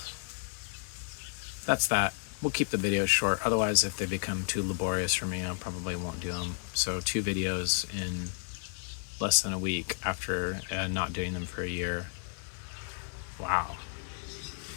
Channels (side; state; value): right; silent; 56 dB below the other